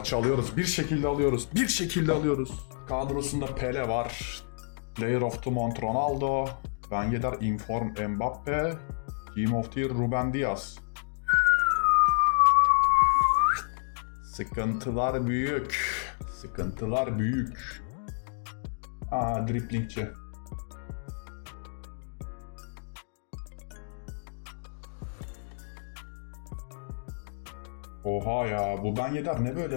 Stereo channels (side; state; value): right; silent; 56 dB below the other